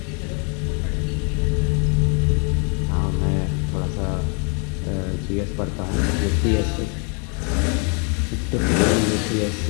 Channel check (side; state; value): right; quieter; 37.1 dB